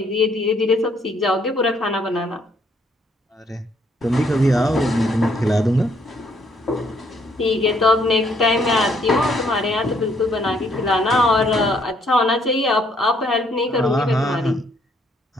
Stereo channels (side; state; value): both; normal; correlation 0.68